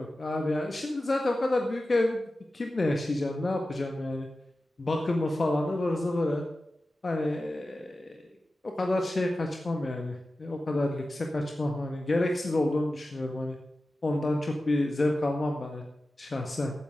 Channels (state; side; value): normal; both; correlation 0.94